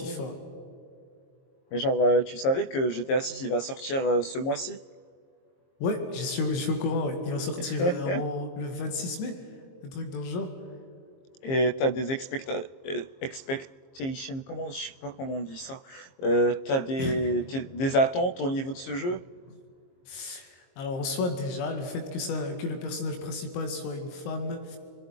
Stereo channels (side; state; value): right; late; 22 ms